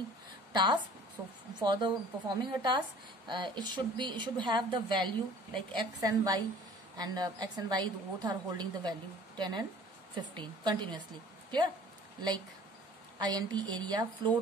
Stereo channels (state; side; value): normal; both; correlation 0.50